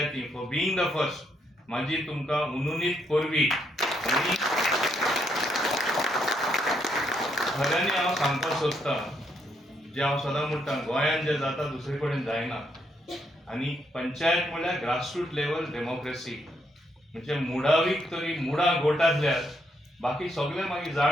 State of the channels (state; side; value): normal; both; correlation 0.76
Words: फॉर बिईंग द फर्स्ट म्हाजी तुमकां उनुनीत परबी. आनी खऱ्यांनी हांव सांगपाक सोदतां जे हांव सदां म्हणटा गोंयांत जे जाता दुसरे कडेन जायना. आनी पंचायत म्हणल्यार ग्रासरूट लेवल डेमोक्रेसी, म्हणजे मुडावीक तरी मुडां गोटातल्यार बाकी सगळे मागीर